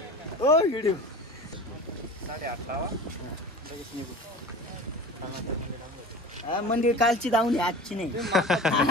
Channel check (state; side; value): normal; both; correlation 0.36